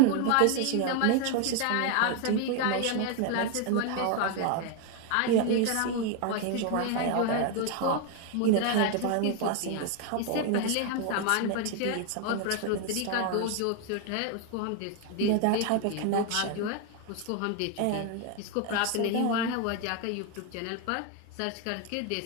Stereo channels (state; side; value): different; both; correlation 0.01